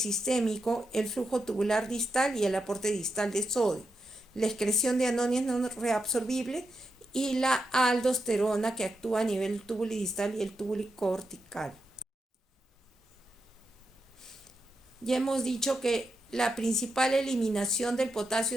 el flujo tubular distal y el aporte distal de sodio, la excreción de aniones no reabsorbibles y la aldosterona, que actúa a nivel tubulidistal y el tubulicortical. Ya hemos dicho que la principal eliminación del potasio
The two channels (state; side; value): normal; both; correlation 0.86